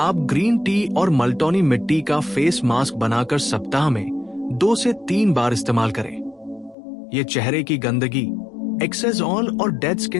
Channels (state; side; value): drops out; right; at 6.8 s